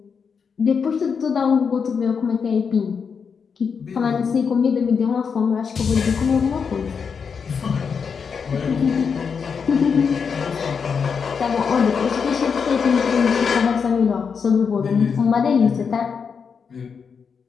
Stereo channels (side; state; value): right; quieter; 6.1 dB